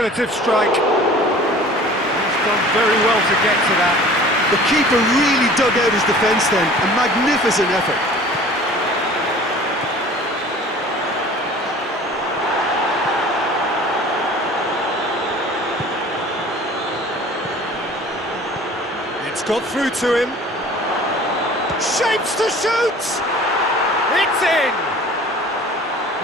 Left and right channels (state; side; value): normal; both; correlation 0.46